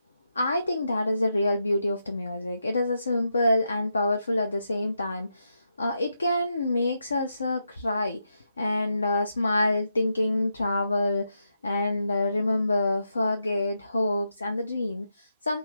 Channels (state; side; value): inverted; both; correlation -0.84